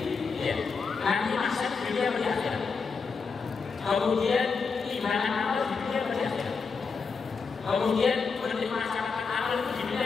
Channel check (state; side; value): quieter; right; 5.1 dB